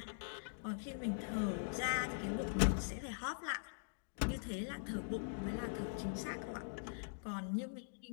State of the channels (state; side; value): silent; right; digital silence